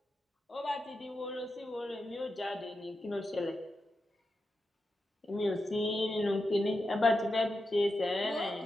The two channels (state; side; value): normal; both; correlation 0.89